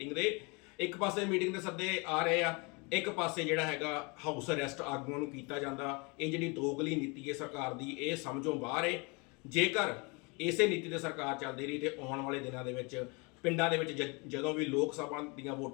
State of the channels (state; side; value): quieter; right; 29.7 dB